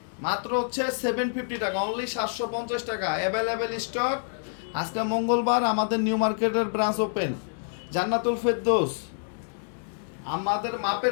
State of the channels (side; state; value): right; silent; digital silence